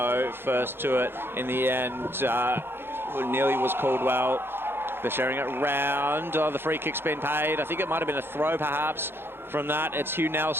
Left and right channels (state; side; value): late; left; 0.11 ms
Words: First to it in the end, nearly was Caldwell. They're sharing it round. Oh, the free kick's been paid. I think it might have been a throw perhaps from that. It's Hugh